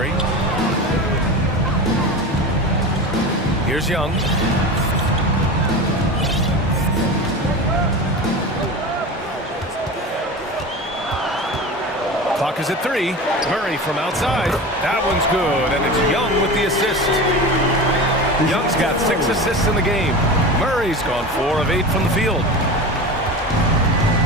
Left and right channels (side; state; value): both; normal; correlation 0.29